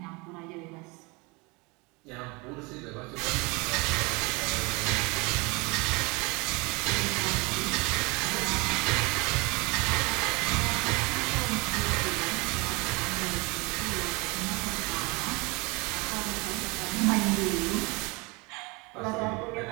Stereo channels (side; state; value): left; quieter; 27.2 dB